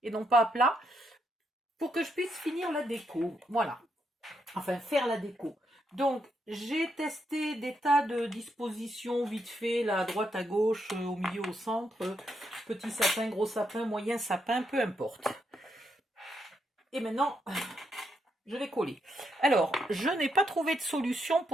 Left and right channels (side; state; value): both; normal; correlation 0.79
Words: et non pas à plat pour que je puisse finir la déco. Voilà. Enfin, faire la déco. Donc, j'ai testé des tas de dispositions vite fait, là, à droite, à gauche, au milieu, au centre, petit sapin, gros sapin, moyen sapin, peu importe. Et maintenant, je vais coller. Alors, je n'ai pas trouvé de solution